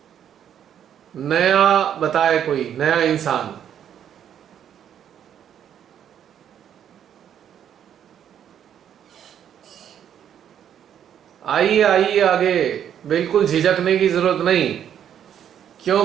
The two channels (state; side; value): quieter; left; 9.5 dB